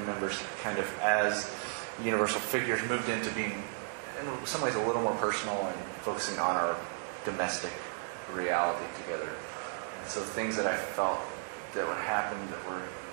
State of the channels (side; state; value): left; silent; 55 dB below the other